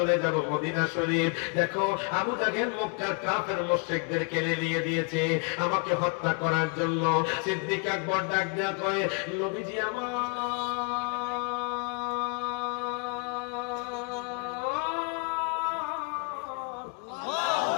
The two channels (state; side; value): quieter; right; 34.7 dB